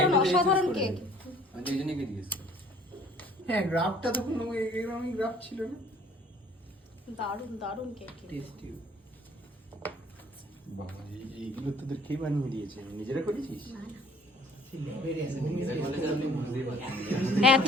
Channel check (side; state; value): both; normal; correlation 0.55